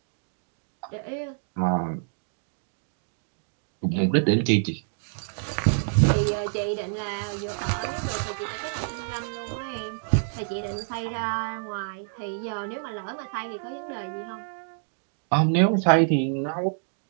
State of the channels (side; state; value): left; silent; digital silence